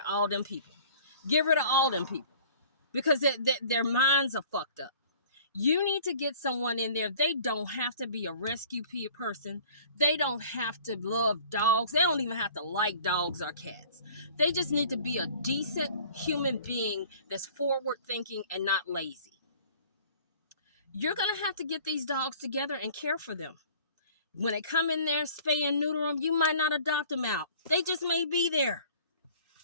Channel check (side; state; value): both; inverted; correlation -0.50